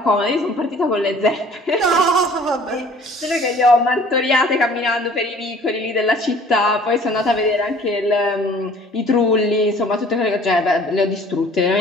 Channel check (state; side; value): normal; both; correlation 0.52